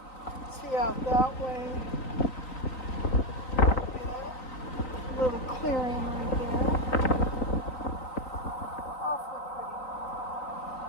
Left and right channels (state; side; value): late; right; 3.9 ms